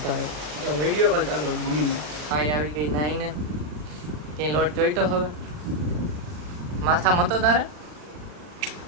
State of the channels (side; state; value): left; late; 40 ms